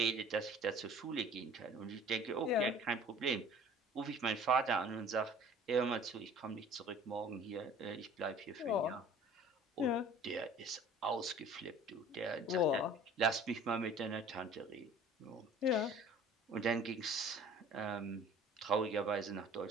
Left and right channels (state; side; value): normal; both; correlation 0.48